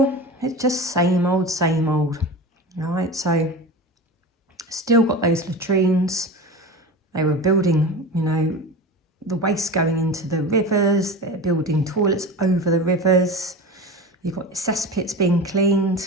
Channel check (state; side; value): normal; both; correlation 0.30